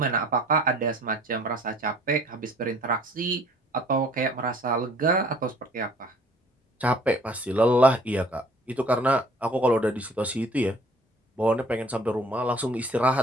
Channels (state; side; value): normal; both; correlation 0.54